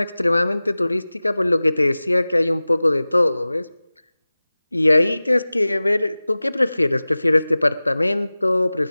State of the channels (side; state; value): both; inverted; correlation -0.98